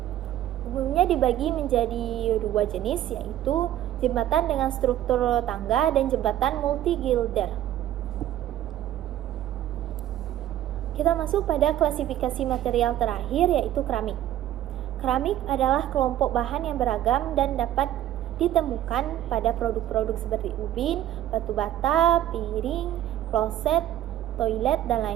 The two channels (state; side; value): quieter; left; 12.6 dB